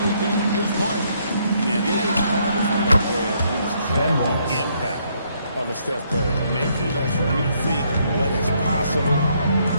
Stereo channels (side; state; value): both; inverted; correlation -0.71